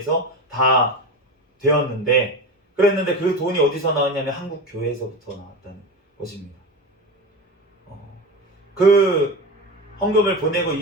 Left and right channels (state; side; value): normal; both; correlation 0.24